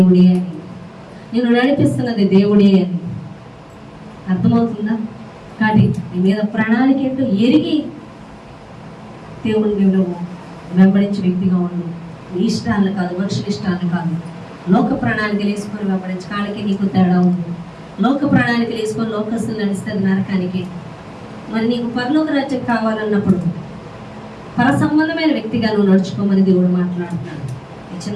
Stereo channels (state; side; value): identical; both; correlation 1.00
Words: అని, నేను నడిపిస్తున్నది దేవుడే అని. అర్థమవుతుందా? కాబట్టి నీ మీద ప్రణాళిక ఏంటో ఎరిగి దేవుడిని నువ్వు వెంబడించే వ్యక్తిగా ఉండు. నీ ఇష్టాలను కాదు, మనుషుల ఇష్టాలను కాదు, లోక ప్రణాళికలు వేసుకొని వెంబడించి కాళ్ళకి నీకు తేడా ఉంది. లోక ప్రణాళికలు వేసుకొని లోకస్తులు నడుస్తుంది నరకానికి. మరి నీకు పరలోక రాజ్యం కావాలన్నప్పుడు పర సంబంధమైన వ్యక్తిగా నువ్వు నడుచుకోమని దేవుడు మాట్లాడుతున్నాడు. ఈ